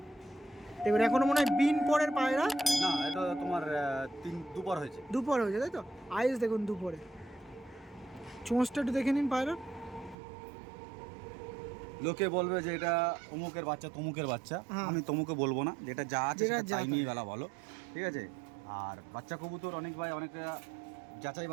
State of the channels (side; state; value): left; drops out; at 10.2 s